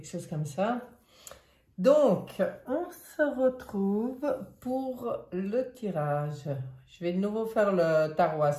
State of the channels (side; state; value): both; identical; correlation 1.00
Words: chose comme ça. Donc, on se retrouve pour le tirage. Je vais de nouveau faire le tarot